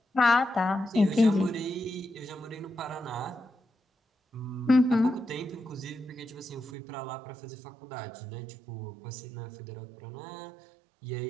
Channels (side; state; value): left; drops out; at 6.7 s